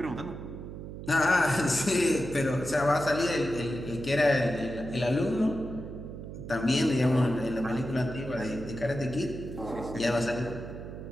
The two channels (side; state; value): right; noise; hum, 10 dB below the sound